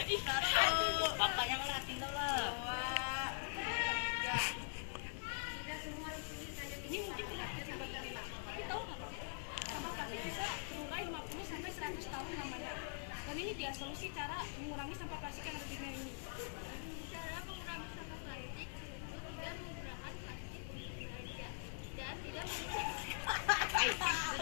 Bapaknya ngeliatin dulu. Ini mungkin terlihat kecil buat kita, tapi tahu nggak Pak? Sampah plastik bisa terurai 50 sampai 100 tahun namanya. Dan ini dia solusi cara mengurangi sampah plastik yang ada di dunia ini. cara mengurangi sampah plastik itu tidak menggunakan plastik untuk belanja dan tidak menggunakan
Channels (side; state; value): right; silent; digital silence